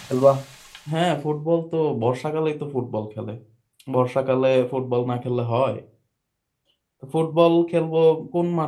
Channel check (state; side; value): identical; both; correlation 1.00